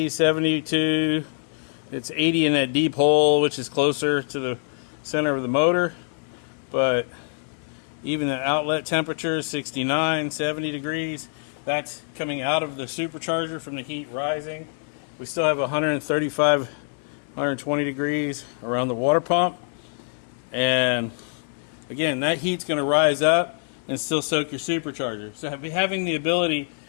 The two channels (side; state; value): right; silent; digital silence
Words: 72. It's 80 in that deep hole, which is closer to the center of the motor. But even the outlet temperature is 69, 70 degrees. That's coming out of the supercharger from the heat rising. We still have 135, 120 degrees around the water pump. And again, that heat's going to rise up and still soak your supercharger. So having the ability